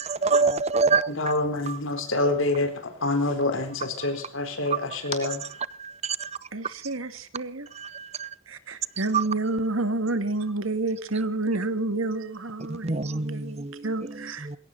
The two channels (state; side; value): normal; both; correlation 0.02